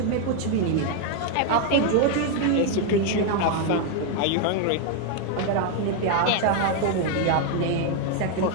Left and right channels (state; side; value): different; both; correlation 0.01